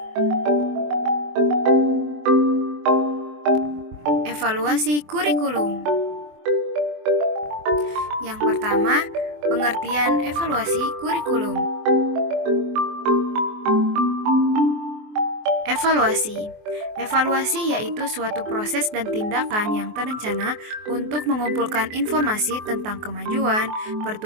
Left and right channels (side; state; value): left; late; 24 ms